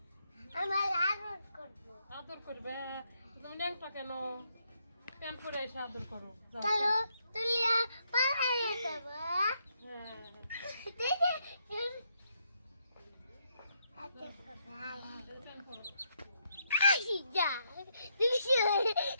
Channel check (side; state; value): both; inverted; correlation -0.77